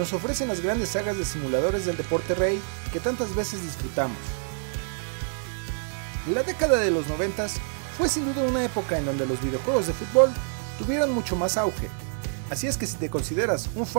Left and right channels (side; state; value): left; silent; 60 dB below the other